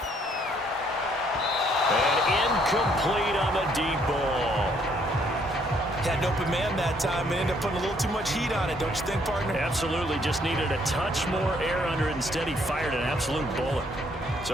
And incomplete on the deep ball. Had an open man that time and ended up putting a little too much heat on it, don't you think, partner? Absolutely, just needed a touch more air under it. Instead, he fired an absolute bullet.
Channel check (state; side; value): normal; both; correlation 0.67